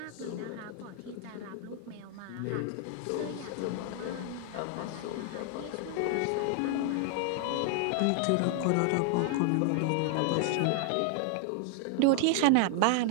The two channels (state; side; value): different; both; correlation 0.00